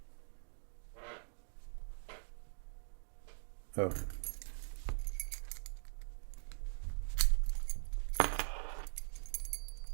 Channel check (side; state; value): left; silent; digital silence